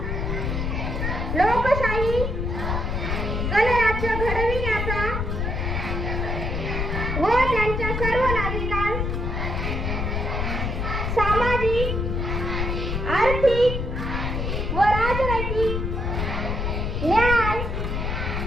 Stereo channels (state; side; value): noise; left; rumble, 1 dB below the sound